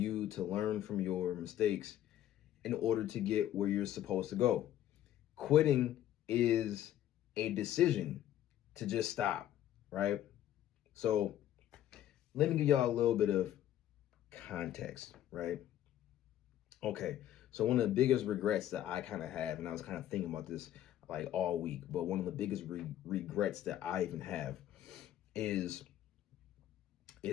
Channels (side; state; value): right; quieter; 12.1 dB